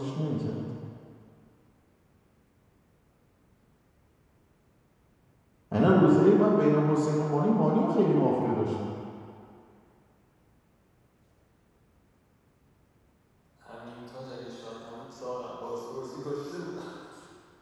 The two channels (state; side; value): identical; both; correlation 1.00